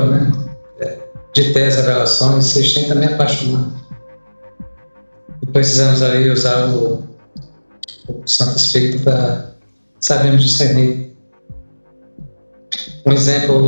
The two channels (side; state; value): both; inverted; correlation -1.00